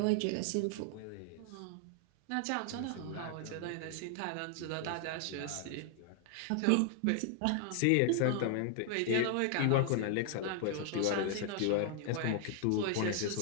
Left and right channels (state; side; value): different; both; correlation 0.00